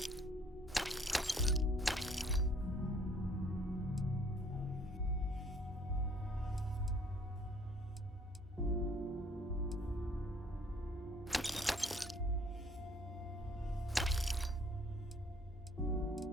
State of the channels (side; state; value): both; normal; correlation 0.59